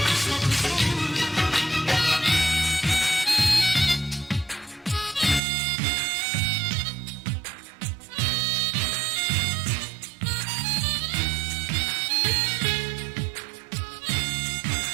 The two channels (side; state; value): left; drops out; at 5.4 s